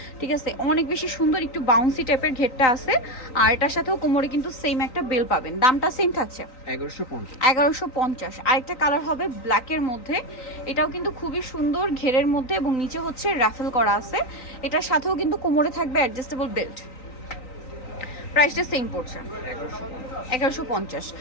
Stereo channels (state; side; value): late; right; 3.9 ms